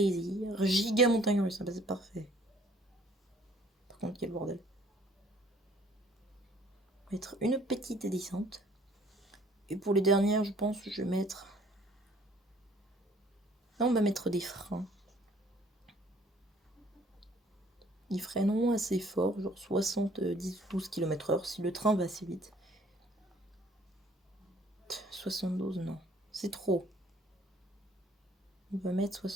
Giga montagne russe, c'est parfait. Par contre, quel bordel. Mettre une petite descente. Et pour les dernières, je pense que je vais mettre... Là, on va mettre des freins. Ils freineront assez fort, genre 70-12 km/h si le train va assez vite. 72, non. C'est trop. On va mettre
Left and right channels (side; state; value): both; normal; correlation 0.58